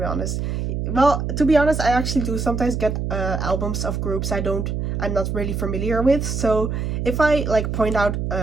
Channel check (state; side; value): noise; right; hum, 2 dB below the sound